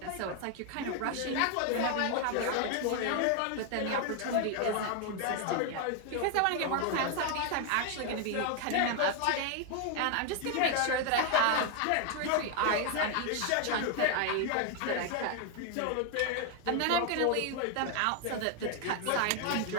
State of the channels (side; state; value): both; different; correlation 0.01